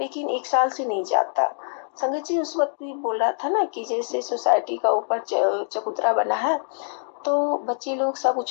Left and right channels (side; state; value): right; silent; digital silence